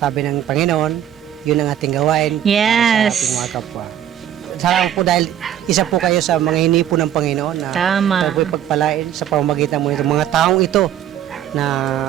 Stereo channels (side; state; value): left; quieter; 10.7 dB